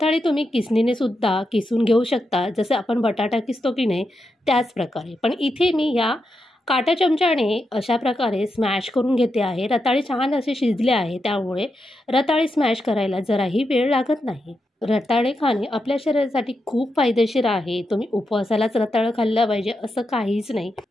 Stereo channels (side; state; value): both; normal; correlation 0.86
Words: तुम्ही किसणीने सुद्धा किसून घेऊ शकता, जसं आपण बटाटा किसतो की नाही त्याच प्रकारे. पण इथे मी या काटा चमच्याने अशा प्रकारे स्मॅश करून घेते आहे. रताळे छान असे शिजले आहे, त्यामुळे रताळे स्मॅश करायला जराही वेळ लागत नाही. रताळे खाणे आपल्या शरीरासाठी खूप फायदेशीर आहे. तुम्ही उपवासालाच रताळं खाल्लं पाहिजे असं काहीच नाही.